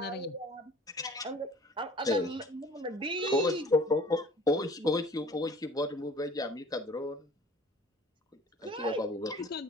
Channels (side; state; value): both; normal; correlation 0.48